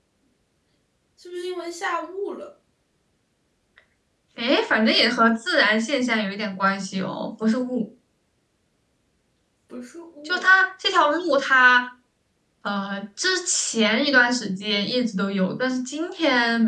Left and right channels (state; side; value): identical; both; correlation 1.00